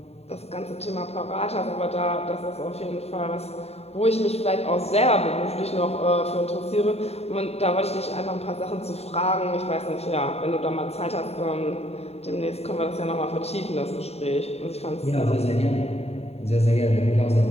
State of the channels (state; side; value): late; right; 0.30 ms